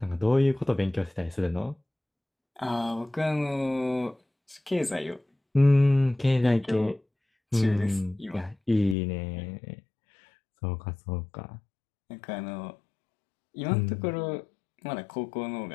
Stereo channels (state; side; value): drops out; right; at 9.0 s